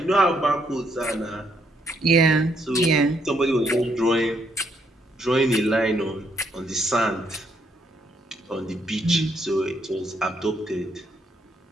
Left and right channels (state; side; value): normal; both; correlation 0.73